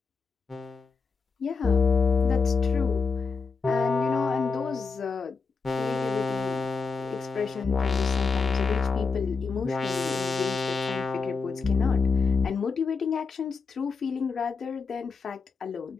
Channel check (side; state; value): right; quieter; 4.8 dB